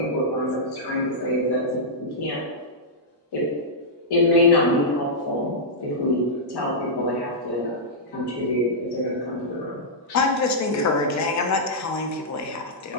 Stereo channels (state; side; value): normal; both; correlation -0.11